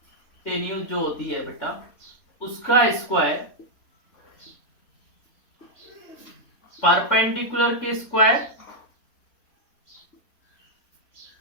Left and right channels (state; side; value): late; right; 3.6 ms